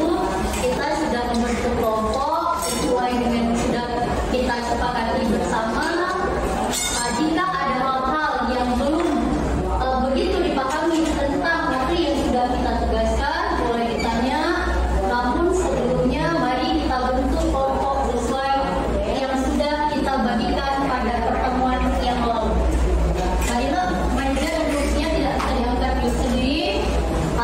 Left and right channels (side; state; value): both; identical; correlation 1.00